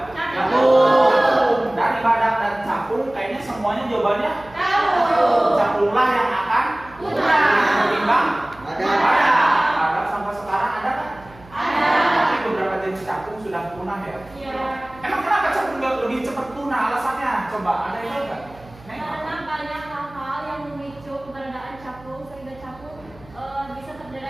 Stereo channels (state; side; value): noise; right; hum, 23 dB below the sound